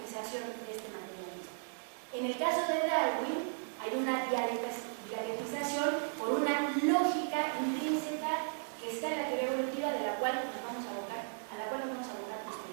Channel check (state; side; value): silent; left; digital silence